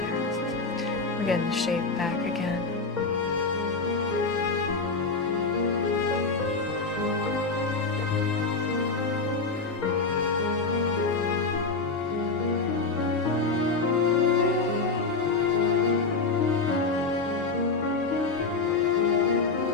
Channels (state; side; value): quieter; right; 4.0 dB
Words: We're getting the shape back again.